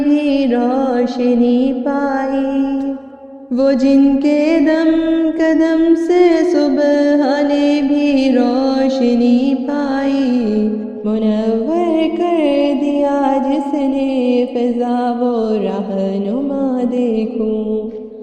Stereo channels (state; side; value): identical; both; correlation 1.00